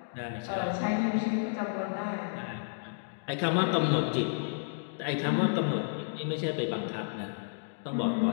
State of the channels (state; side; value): silent; right; digital silence